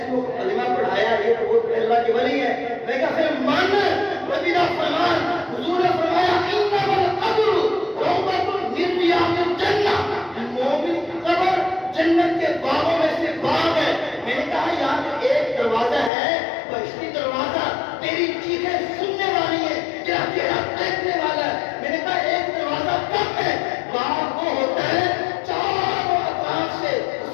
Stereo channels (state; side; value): drops out; right; at 16.1 s